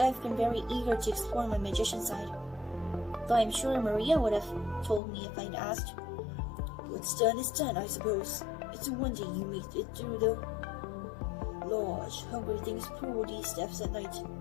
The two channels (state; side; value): drops out; right; at 5.0 s